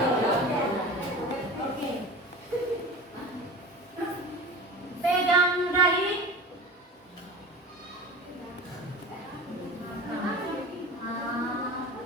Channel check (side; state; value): both; normal; correlation 0.34